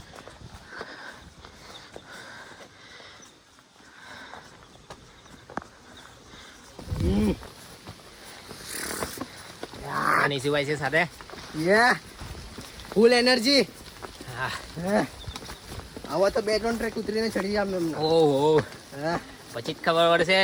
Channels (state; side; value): identical; both; correlation 1.00